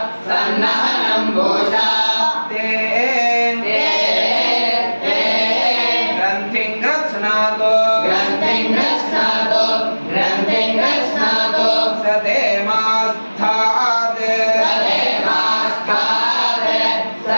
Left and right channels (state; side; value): inverted; both; correlation -1.00